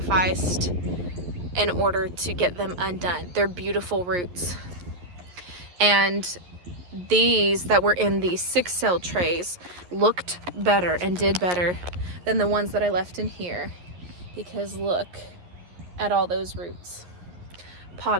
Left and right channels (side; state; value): left; late; 11 ms